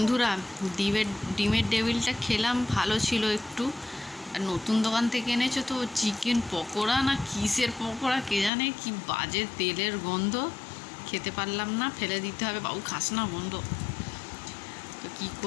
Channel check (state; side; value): drops out; right; at 8.5 s